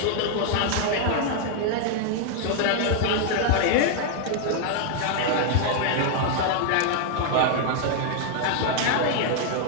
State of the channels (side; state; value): both; different; correlation 0.00